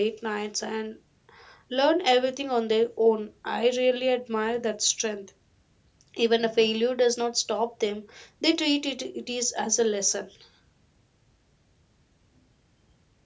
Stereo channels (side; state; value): both; identical; correlation 1.00